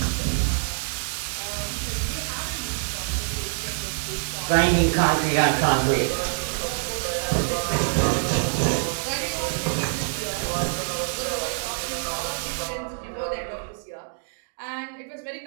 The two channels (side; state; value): left; silent; digital silence